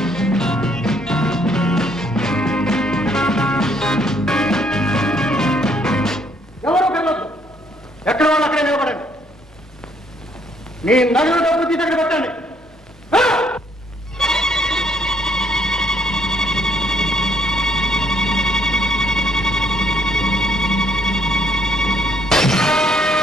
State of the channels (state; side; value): normal; both; correlation 0.68